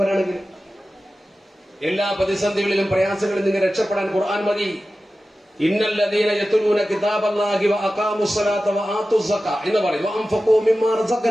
എല്ലാ പ്രതിസന്ധികളിലും പ്രയാസങ്ങളിൽ നിന്ന് രക്ഷപ്പെടാൻ ഖുർആൻ മതി. ഇന്നല്ലദീന യത്ലൂന കിതാബല്ലാഹി വഅഖാമുസ്സലാത വആതുസ്സക എന്ന് പറയും, വഅൻഫഖൂ മിമ്മാ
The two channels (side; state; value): both; normal; correlation 0.94